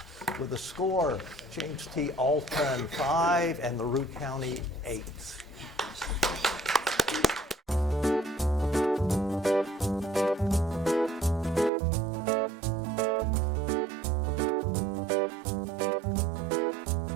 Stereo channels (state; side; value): drops out; left; at 11.7 s